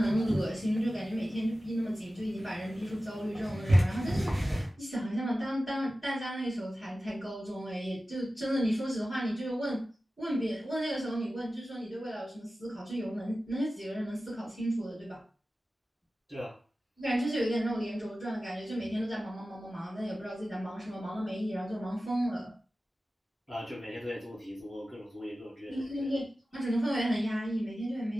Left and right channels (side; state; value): both; normal; correlation 0.95